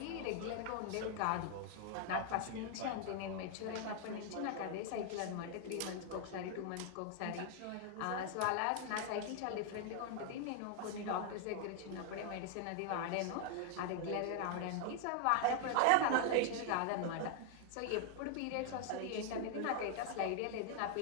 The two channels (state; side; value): different; both; correlation 0.00